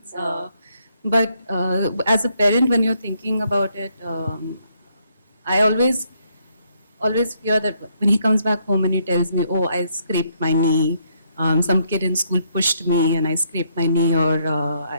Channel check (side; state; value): both; inverted; correlation -0.73